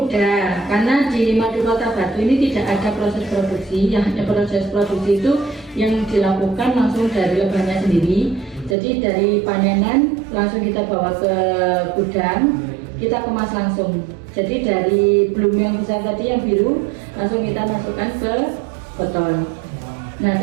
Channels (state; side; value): drops out; left; at 8.8 s